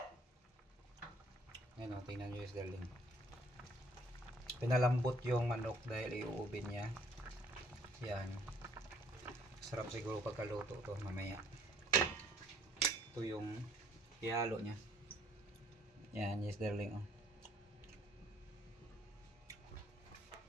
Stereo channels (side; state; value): both; normal; correlation 0.62